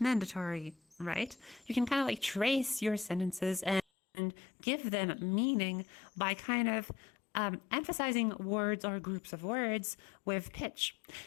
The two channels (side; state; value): right; drops out; at 3.9 s